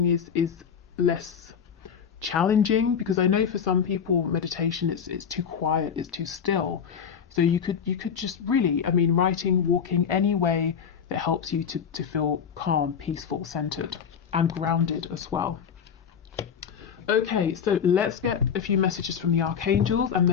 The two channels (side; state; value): right; quieter; 7.3 dB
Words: is less challenging, because I know for some people meditation it's too quiet, it's too still. So you could just really, I mean, writing, walking, any way that helps you to feel calm, peaceful, centered, and grounded as well. Okay, so let's get a few messages from the archangels, and